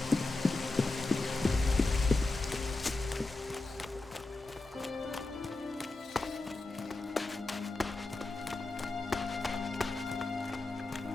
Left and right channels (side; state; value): right; quieter; 3.1 dB